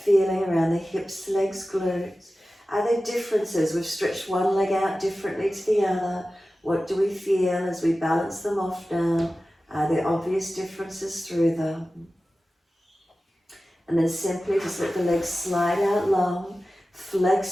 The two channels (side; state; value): both; normal; correlation 0.95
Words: feeling around the hips, legs, glutes. Are there differences? We've stretched one leg out differently to the other. What do we feel as we balance them off now? Are there obvious differences through them? And then simply just let the legs slide out long,